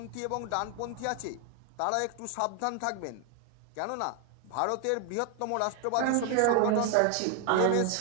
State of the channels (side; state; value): both; different; correlation 0.01